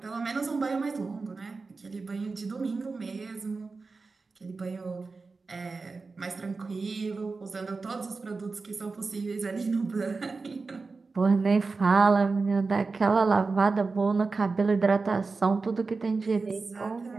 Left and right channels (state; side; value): quieter; left; 4.1 dB